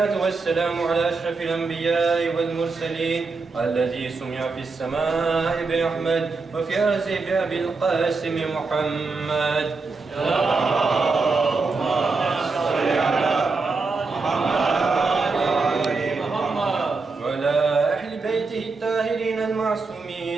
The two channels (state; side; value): quieter; left; 4.1 dB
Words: والسلام على أشرف الأنبياء والمرسلين الذي سمع في السماء بأحمد وفي الأرض بأبي القاسم محمد